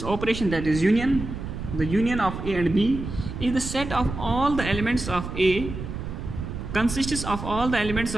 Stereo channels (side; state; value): right; noise; rumble, 7 dB below the sound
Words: operation, that is union, the union of A and B is the set of all the elements of A, consists of all the elements